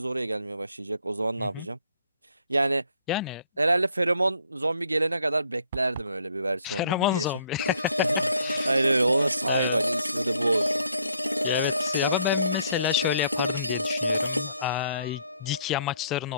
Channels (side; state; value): both; inverted; correlation -0.65